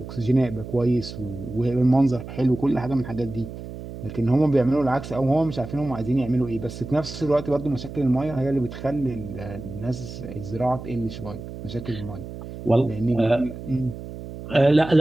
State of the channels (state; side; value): noise; right; hum, 11 dB below the sound